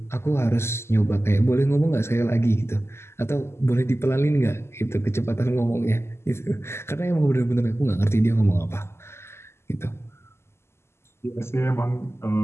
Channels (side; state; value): right; late; 0.12 ms